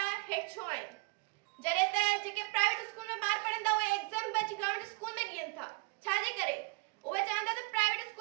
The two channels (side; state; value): left; quieter; 28.4 dB